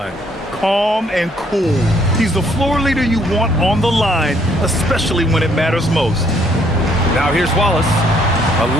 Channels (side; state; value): both; normal; correlation 0.67